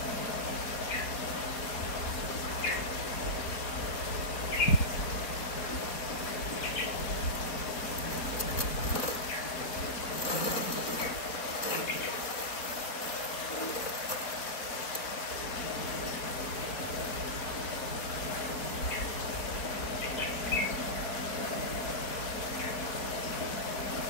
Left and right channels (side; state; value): right; late; 4.2 ms